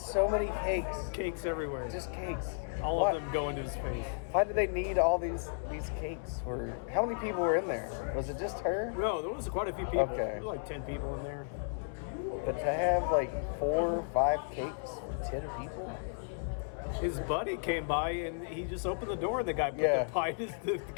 many cakes. Cakes everywhere. Just cakes. All of them go into his face. Why do they need all these cakes? How many people were in there? Was it just her? No, there was quite a few people. Okay. There were like 10 people in there. But to have like 4 or 5 cakes for 10 people? His buddy came by and he just opened the door and the guy put the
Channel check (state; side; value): silent; right; digital silence